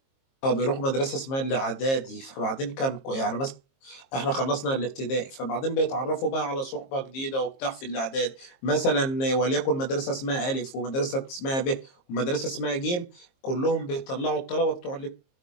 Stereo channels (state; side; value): late; right; 22 ms